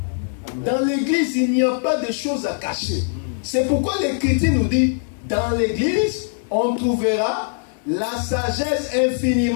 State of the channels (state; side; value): silent; right; digital silence